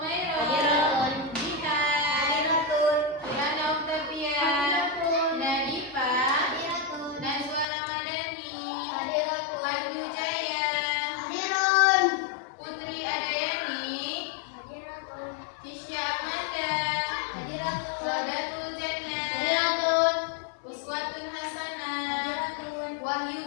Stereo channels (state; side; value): drops out; right; at 7.7 s